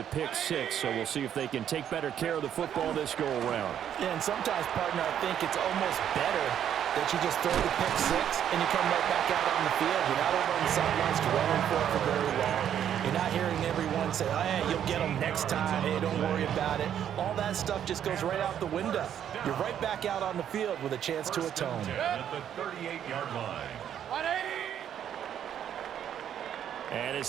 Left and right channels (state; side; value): quieter; left; 9.7 dB